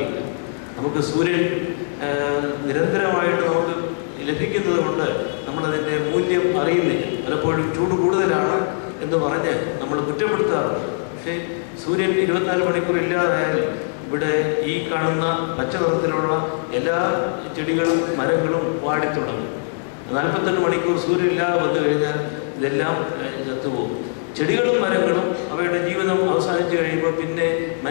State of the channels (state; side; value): silent; right; 61 dB below the other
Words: നമുക്ക് സൂര്യൻ നിരന്തരമായിട്ട് നമുക്ക് ലഭിക്കുന്നത് കൊണ്ട് നമ്മളതിൻ്റെ മൂല്യം അറിയുന്നില്ല. പലപ്പോഴും ചൂട് കൂടുതലാണ് എന്ന് പറഞ്ഞ് നമ്മൾ കുറ്റപ്പെടുത്താറുണ്ട്. പക്ഷേ സൂര്യൻ 24 മണിക്കൂർ ഇല്ലാതായാൽ ഇവിടെ ഈ കാണുന്ന പച്ച നിറത്തിലുള്ള എല്ലാ ചെടികളും മരങ്ങളും വാടിത്തുടങ്ങും. 48 മണിക്കൂർ സൂര്യൻ ഇല്ലാതെ വന്നു കഴിഞ്ഞാൽ ഇതെല്ലാം ചത്തുപോകും. ചെടികളും മരങ്ങളും അവയുടെ ജീവിതം അവസാനിച്ച് കഴിയുമ്പോൾ പിന്നെ